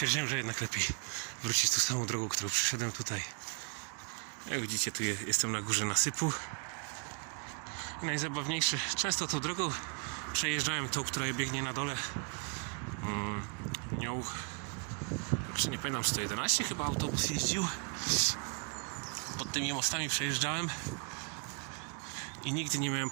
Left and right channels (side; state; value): left; quieter; 37.1 dB